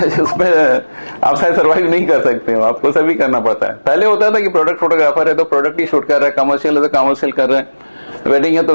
उसमें आप शायद सर्वाइव नहीं कर सकते हो, आपको सभी करना पड़ता है। पहले होता था कि प्रोडक्ट फोटोग्राफर है तो प्रोडक्ट ही शूट कर रहा है, कमर्शियल है तो कमर्शियल कर रहा है, वेडिंग है तो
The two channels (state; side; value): inverted; both; correlation -1.00